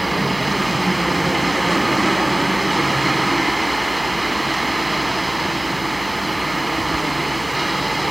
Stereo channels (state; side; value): noise; left; hum, 17 dB below the sound